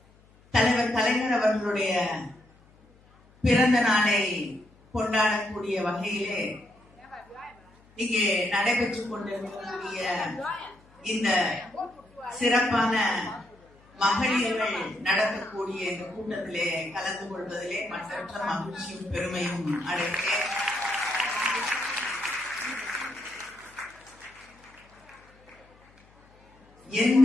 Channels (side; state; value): left; noise; hum, 29 dB below the sound